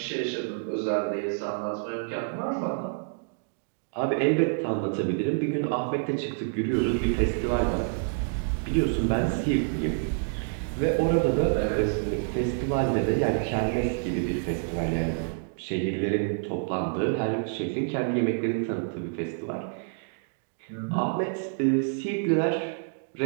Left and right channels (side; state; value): left; silent; digital silence